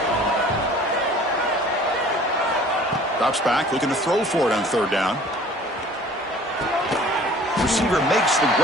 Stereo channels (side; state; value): both; normal; correlation 0.49